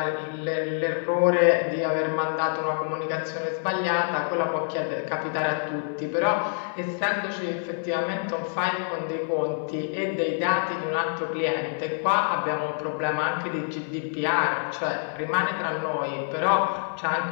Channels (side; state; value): right; silent; 61 dB below the other